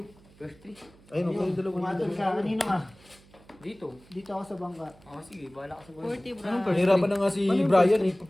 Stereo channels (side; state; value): right; noise; hum, 27 dB below the sound